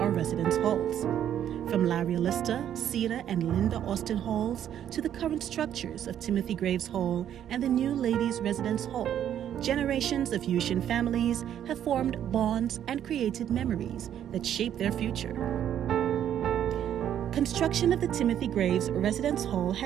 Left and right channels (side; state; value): left; quieter; 10.2 dB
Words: residence halls. From Larry Lister, Cedar, and Linda Austin halls to the current structures of Timothy Graves Hall and the new Ladies' Residence Hall, generations of Yushin families have formed bonds and created memories that shape their future. Construction of the Timothy Graves Residence Hall